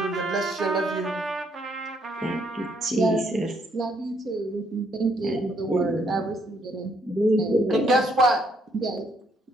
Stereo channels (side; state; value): both; normal; correlation 0.71